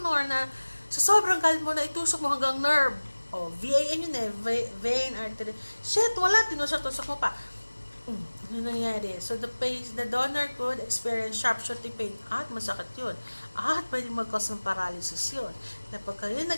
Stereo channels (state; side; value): inverted; both; correlation -1.00